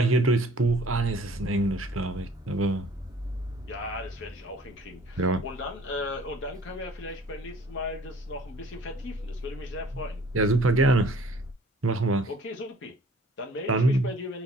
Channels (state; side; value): normal; both; correlation 0.53